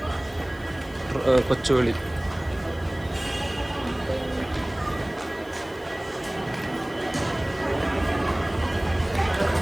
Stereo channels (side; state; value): left; noise; hiss, 26 dB below the sound